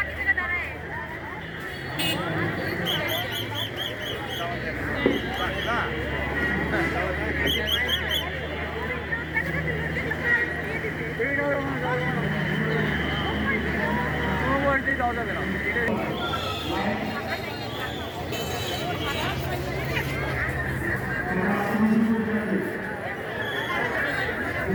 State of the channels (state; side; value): identical; both; correlation 1.00